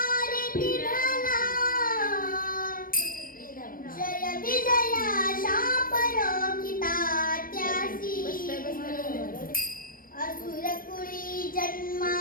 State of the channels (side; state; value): right; late; 0.41 ms